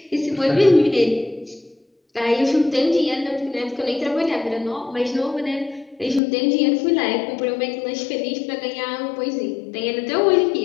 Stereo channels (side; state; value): right; drops out; at 6.2 s